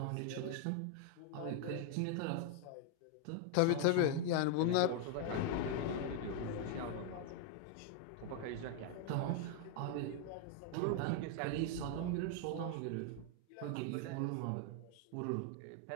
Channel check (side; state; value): both; different; correlation 0.00